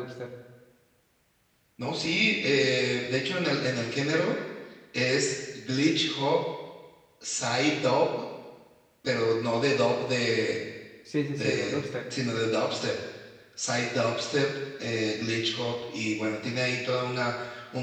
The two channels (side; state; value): both; identical; correlation 1.00